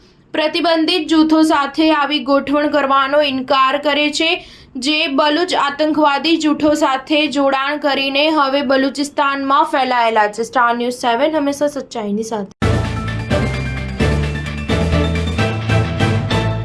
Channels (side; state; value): both; identical; correlation 1.00